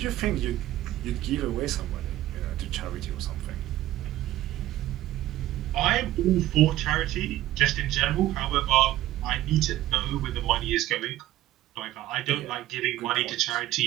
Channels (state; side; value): quieter; left; 14.7 dB